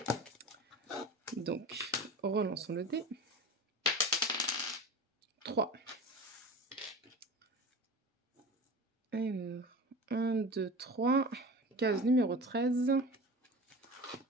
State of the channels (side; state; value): both; normal; correlation 0.34